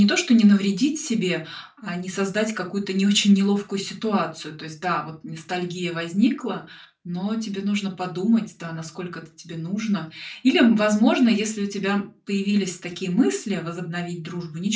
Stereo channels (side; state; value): both; identical; correlation 1.00